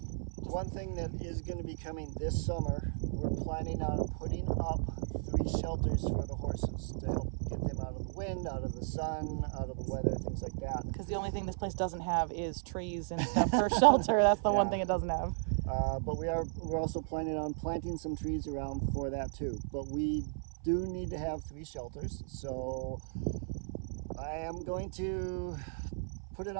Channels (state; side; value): silent; left; 54 dB below the other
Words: one thing that is going to be coming this summer, we're planning on putting up 3 shelters for the horses to help get them out of the wind, out of the sun, out of the weather, things like that. Because the only thing this place doesn't have is trees and stuff for shelter. That's the one thing it doesn't have. But we're also planning on planting some trees around for that too. But we do need to have 3 shelters. So I am going to put it